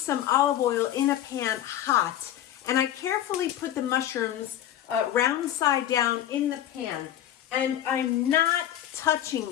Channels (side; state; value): right; quieter; 11.7 dB